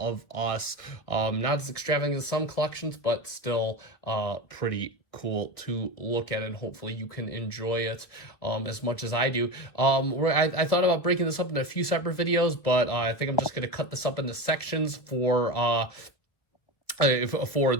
us. Not as extravagant as some collections, but still pretty cool to look at, and hopefully you can enjoy it as much as I do. I thought about breaking this up into a few separate videos, but I think I'm just going to cut this up into sections for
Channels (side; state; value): right; late; 1.3 ms